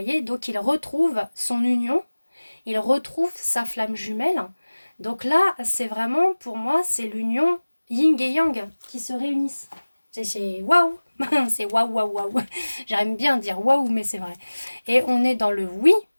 donc il retrouve son union, il retrouve sa flamme jumelle. Donc là, c'est vraiment, pour moi, c'est l'union yin et yang qui se réunissent. C'est waouh, c'est waouh, waouh, waouh. J'aime bien dire waouh, mais c'est vrai. Et on est dans le oui.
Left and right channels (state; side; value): inverted; both; correlation -1.00